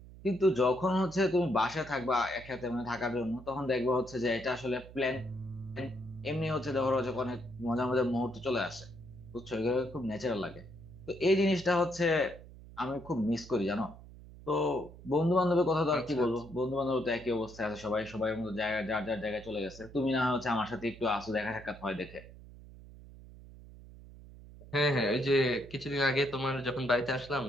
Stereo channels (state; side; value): noise; right; hum, 18 dB below the sound